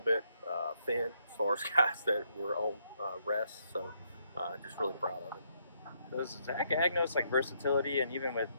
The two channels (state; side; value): inverted; both; correlation -0.73